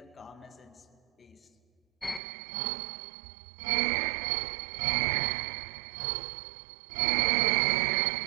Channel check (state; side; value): drops out; left; at 2.2 s